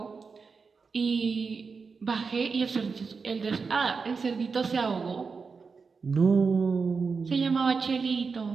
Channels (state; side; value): quieter; left; 5.0 dB